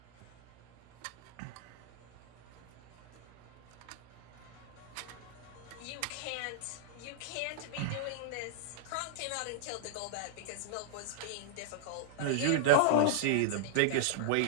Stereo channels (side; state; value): both; different; correlation -0.01